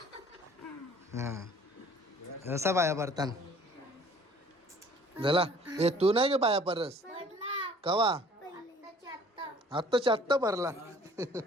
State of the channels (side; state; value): both; normal; correlation 0.53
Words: हा असा पाया पडतान झाला. ए तू नाही गे पाया परस पडला कवा आत्ताची आत्ता. आत्ताच्या आत्ता भरला.